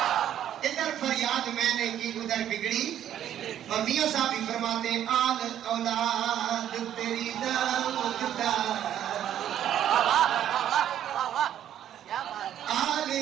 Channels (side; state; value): left; quieter; 10.8 dB